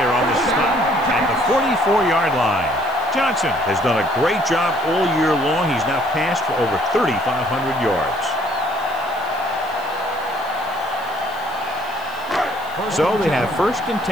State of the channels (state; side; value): noise; right; hiss, 23 dB below the sound